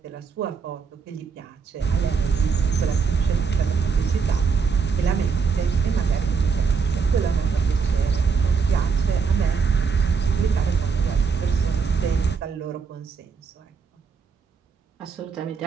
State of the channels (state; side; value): quieter; left; 5.5 dB